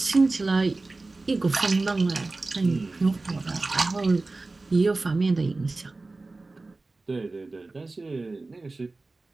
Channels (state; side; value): quieter; left; 3.4 dB